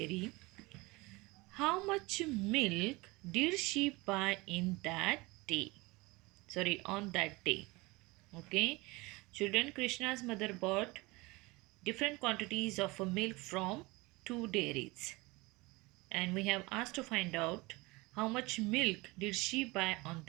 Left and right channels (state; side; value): quieter; left; 23.5 dB